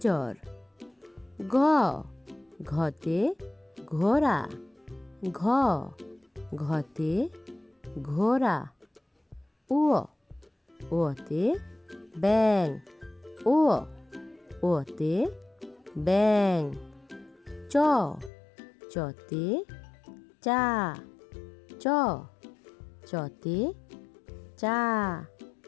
ঘ ঘতে ঘোড়া ঘ ঘতে ঘোড়া উ ওতে ব্যাং উ ওতে ব্যাং চ চতে চা চ চতে চা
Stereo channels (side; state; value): right; drops out; at 18.3 s